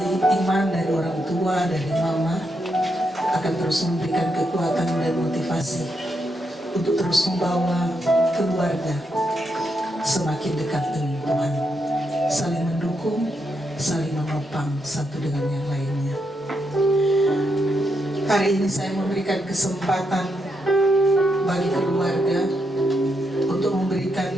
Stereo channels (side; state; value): both; normal; correlation 0.81